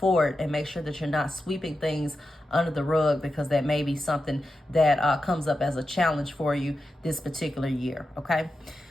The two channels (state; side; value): normal; both; correlation 0.90